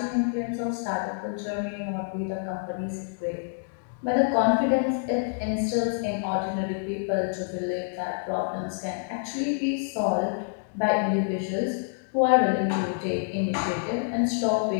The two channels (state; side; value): silent; right; digital silence